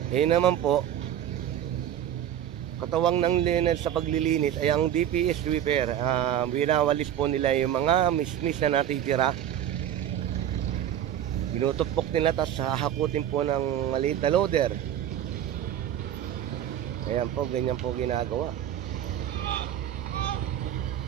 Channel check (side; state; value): left; quieter; 10.7 dB